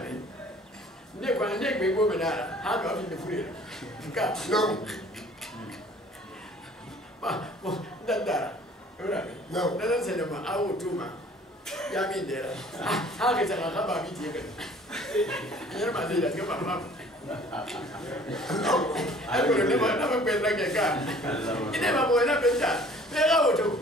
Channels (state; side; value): normal; both; correlation 0.52